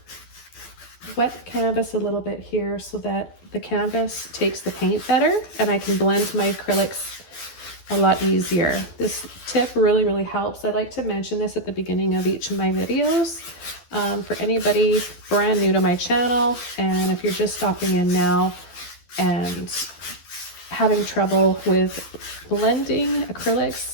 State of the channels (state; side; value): late; right; 12 ms